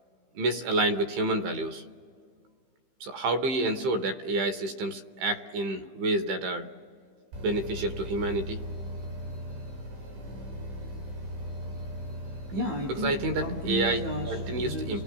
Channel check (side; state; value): left; late; 15 ms